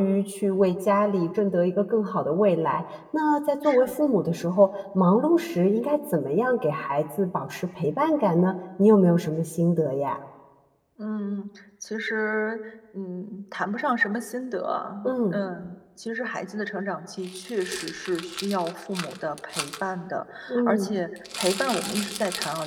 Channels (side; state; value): both; identical; correlation 1.00